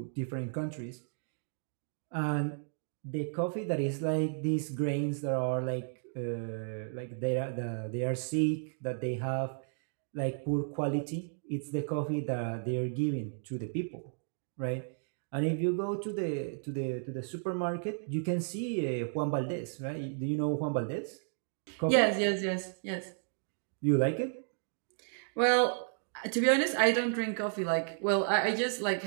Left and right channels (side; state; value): left; silent; digital silence